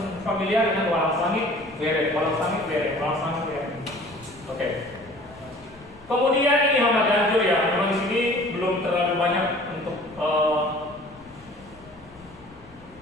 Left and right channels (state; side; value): noise; left; rumble, 26 dB below the sound